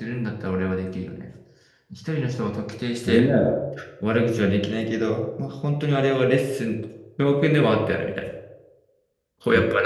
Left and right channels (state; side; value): identical; both; correlation 1.00